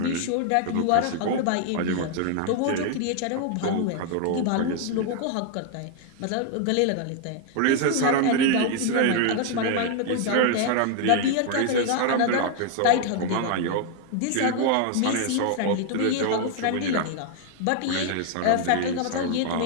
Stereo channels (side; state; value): both; different; correlation 0.00